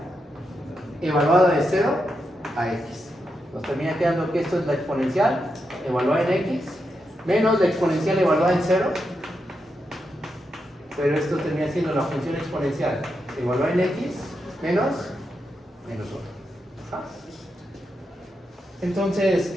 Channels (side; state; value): both; normal; correlation 0.85